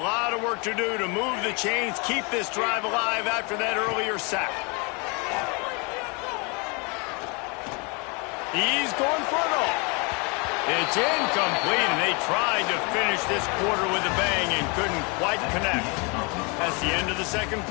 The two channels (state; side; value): quieter; right; 31.4 dB